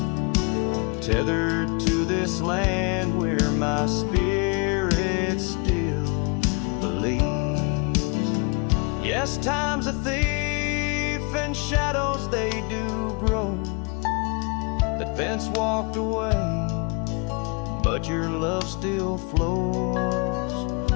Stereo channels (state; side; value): quieter; right; 32.4 dB